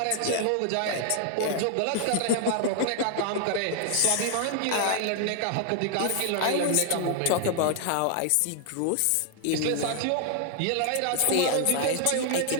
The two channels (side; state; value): both; different; correlation 0.00